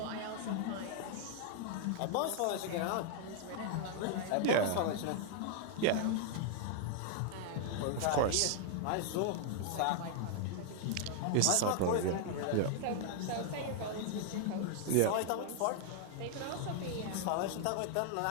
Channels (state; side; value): different; both; correlation 0.00